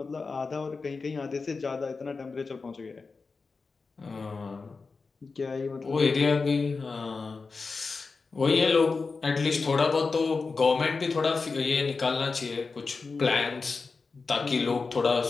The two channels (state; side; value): quieter; right; 4.4 dB